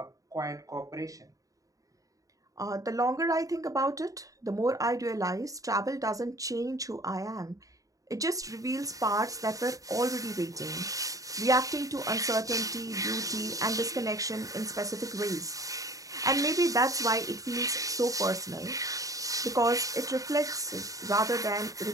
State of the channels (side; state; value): left; late; 0.16 ms